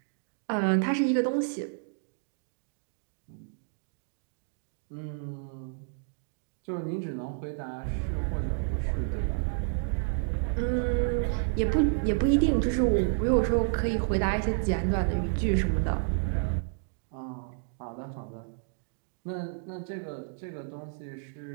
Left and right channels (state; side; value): silent; left; digital silence